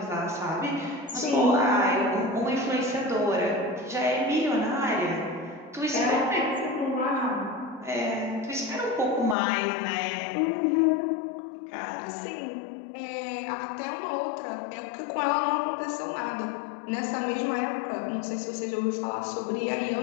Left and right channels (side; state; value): right; drops out; at 9.3 s